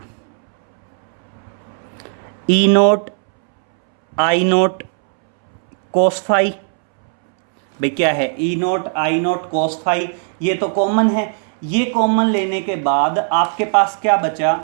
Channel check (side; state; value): left; silent; 68 dB below the other